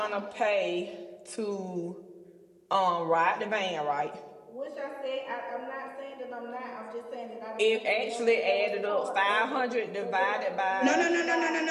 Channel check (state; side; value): identical; both; correlation 1.00